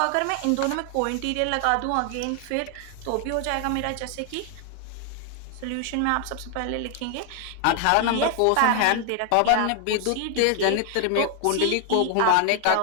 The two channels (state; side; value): different; both; correlation 0.00